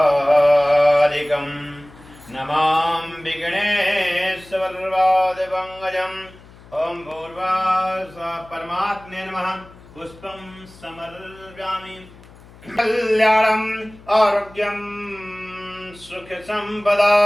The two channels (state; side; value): noise; left; hum, 22 dB below the sound